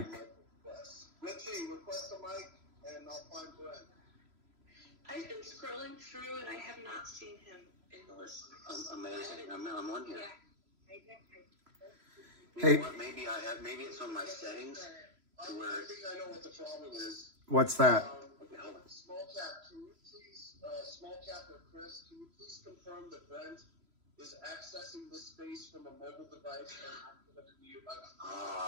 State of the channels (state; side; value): late; left; 3.0 ms